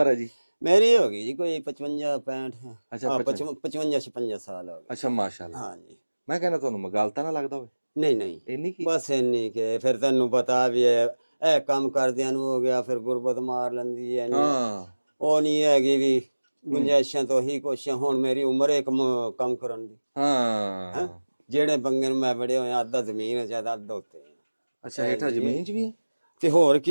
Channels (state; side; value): inverted; both; correlation -1.00